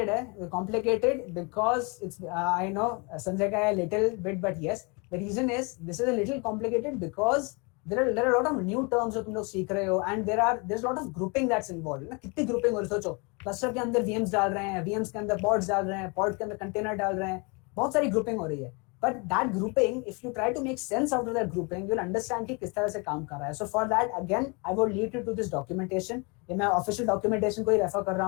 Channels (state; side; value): quieter; right; 31.1 dB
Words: है, complicated because it's, I know Sanjay का है little bit, but yes the reason is this is a little complicated because there are lot of new terms जो तुम लोग सीख रहे हो, and there is lot of grouping that's involve ना। कितनी ग्रुपिंग हो रही है? सोचो, क्लस्टर के अंदर वीएम्स डाल रहे हैं, वीएम्स के अंदर पॉड्स डाल रहे हैं, पॉड के अंदर कंटेनर डाल रहे हैं, बहुत सारी ग्रुपिंग हो रही है। But that grouping, if you try to make sense out of that grouping, you'll understand कि किस तरह से काम कर रहा है. So for that, again, I will lead you to this documentation. ये मैं official documentation को ही रेफर कर रहा